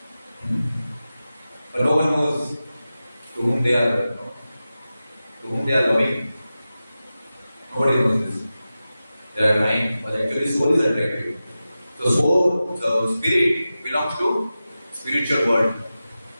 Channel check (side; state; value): both; inverted; correlation -0.94